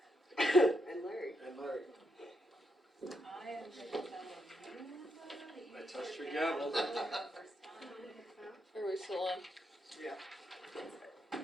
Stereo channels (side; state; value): both; normal; correlation 0.80